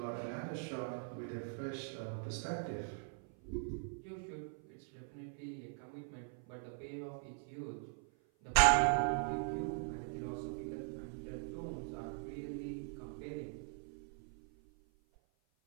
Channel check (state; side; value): silent; left; 50 dB below the other